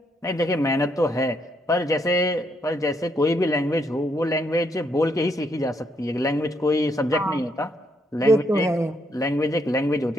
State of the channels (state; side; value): normal; both; correlation 0.75